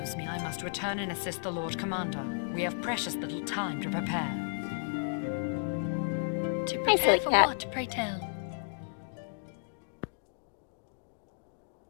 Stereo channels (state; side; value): silent; right; digital silence